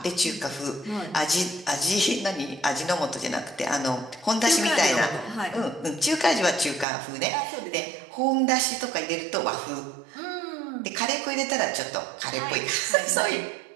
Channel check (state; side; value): drops out; left; at 6.9 s